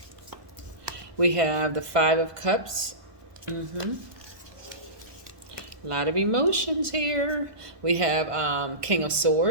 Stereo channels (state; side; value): late; left; 1.5 ms